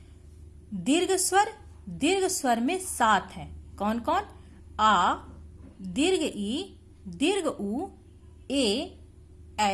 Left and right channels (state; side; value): identical; both; correlation 1.00